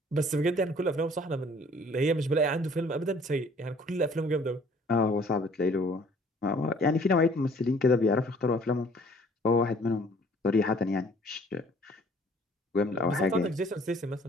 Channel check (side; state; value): both; normal; correlation 0.56